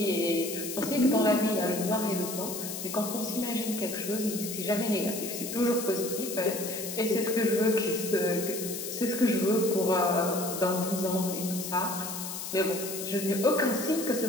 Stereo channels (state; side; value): noise; left; hiss, 7 dB below the sound